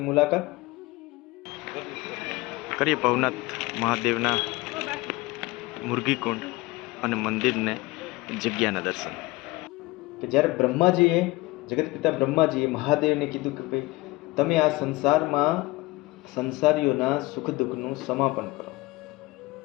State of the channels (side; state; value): right; quieter; 21.1 dB